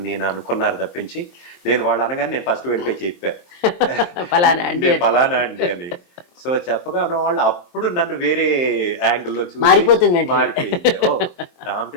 అని అనుకున్నారు తప్పించి, నేను వాళ్ళు అనగానే నేను ఫస్ట్ వెళ్ళిపోయి చెప్పా. ఫలానా అండి నేను అని. ఫలానా అండి అని. సో, చెప్పగానే వాళ్ళు అప్పుడు నన్ను వేరే యాంగిల్‌లో చూసి మారిపోతుంది వెంటనే. మారిపోయింది. ఓహ్!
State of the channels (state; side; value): late; right; 23 ms